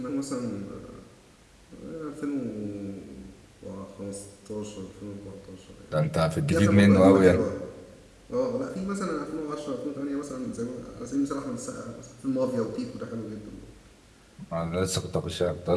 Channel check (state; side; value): identical; both; correlation 1.00